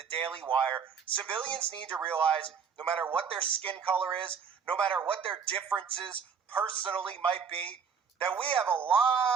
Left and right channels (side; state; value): left; quieter; 6.5 dB